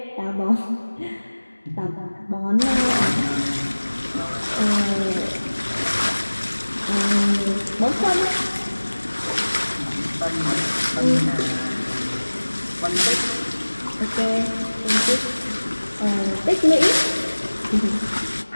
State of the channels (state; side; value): inverted; both; correlation -1.00